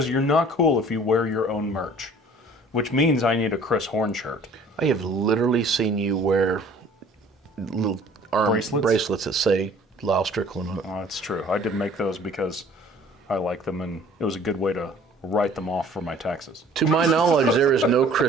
you're not cool if you wear your own merch, which means I need a Chris Horn shirt. I have literally seen you wear little arm bracelets that say Lyal Strickland on it. Oh, that's true. I did make those because I like them, and it was a good way to write them off for my taxes. To my knowledge, there is no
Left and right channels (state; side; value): normal; both; correlation 0.51